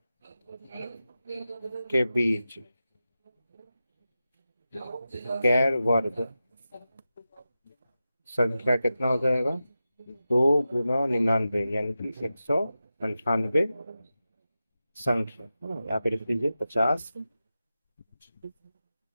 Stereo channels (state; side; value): inverted; both; correlation -0.93